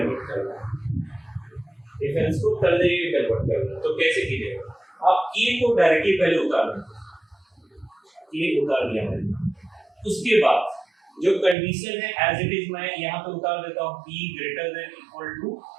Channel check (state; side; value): drops out; left; at 11.6 s